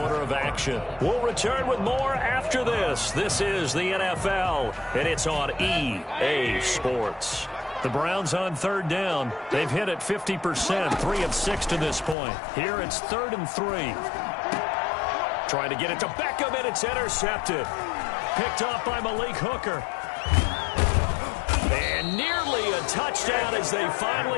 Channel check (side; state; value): right; drops out; at 12.2 s